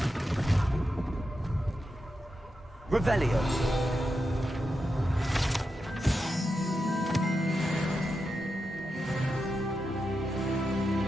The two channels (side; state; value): both; normal; correlation 0.88